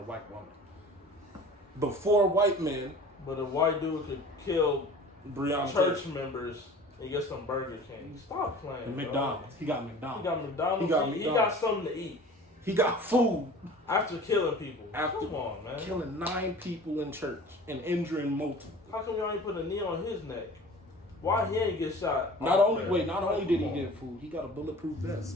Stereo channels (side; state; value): both; normal; correlation 0.43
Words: white woman. Before white men. But a white dude could kill Breonna church members and get some Burger King. Stop playing. And McDonald's. He got McDonald's. He got something to eat. He got food. After killing people. Come on, man. Killing 9 people in church and injuring multiple. How come y'all ain't put a knee on his neck? Why he ain't get shot? Not only did he get food, he got a bulletproof